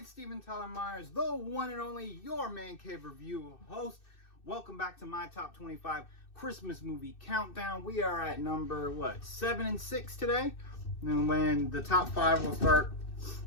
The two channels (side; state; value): right; late; 2.6 ms